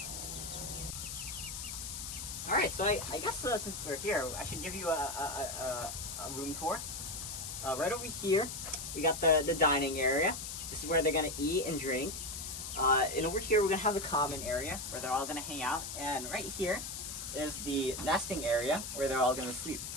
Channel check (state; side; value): noise; left; hiss, 7 dB below the sound